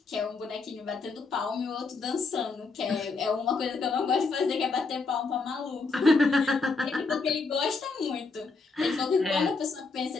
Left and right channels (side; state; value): right; quieter; 4.1 dB